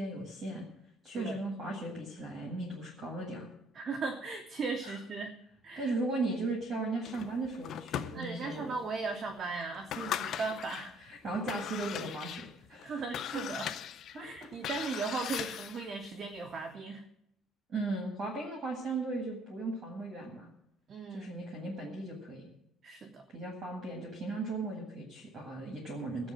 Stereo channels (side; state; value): both; normal; correlation 0.61